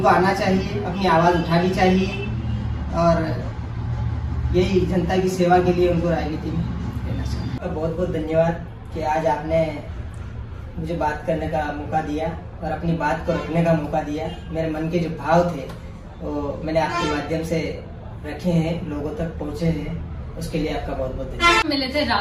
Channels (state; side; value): identical; both; correlation 1.00